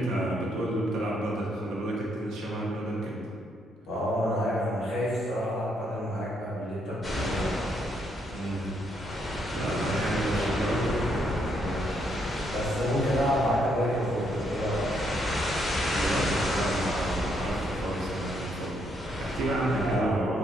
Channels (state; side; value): normal; both; correlation 0.74